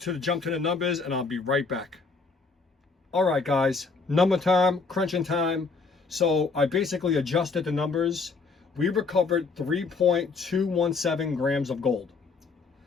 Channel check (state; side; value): quieter; right; 4.4 dB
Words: to jump to the numbers and I'll be right back. All right, guys, number time, crunching time. So I basically adjusted the numbers. We recovered 3.217 grams of gold.